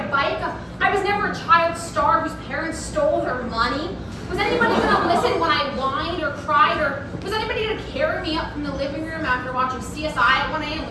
a bike. I was never a child star whose parents stole their money. Was anybody gonna listen when I whined or cried? Or was anybody gonna carry me up from the living room after watching CSI at 1 a.m.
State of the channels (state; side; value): identical; both; correlation 1.00